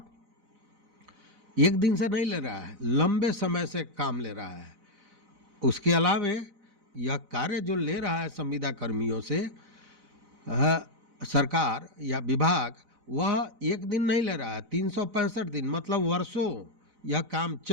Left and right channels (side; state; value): left; late; 4.0 ms